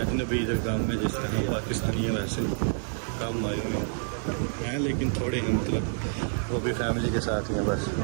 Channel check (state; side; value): silent; left; 59 dB below the other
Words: इधर काम में जिस तरह पाकिस्तानी है वैसे काम आए हुए हैं, लेकिन थोड़े हैं, मतलब वो भी फैमिली के साथ ही हैं। बस